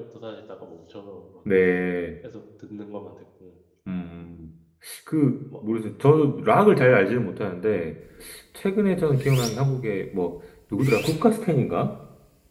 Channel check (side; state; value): both; identical; correlation 1.00